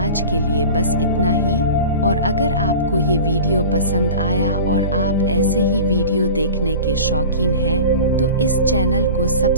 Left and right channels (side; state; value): both; inverted; correlation -0.35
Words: के लिए बस इतना ही। और अगर आपको ये वीडियो पसंद आया और आप ऐसे ही वीडियो देखने के शौकीन हैं, तो इस चैनल को